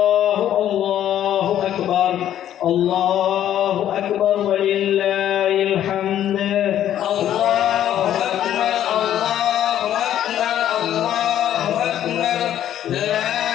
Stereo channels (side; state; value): right; quieter; 11.2 dB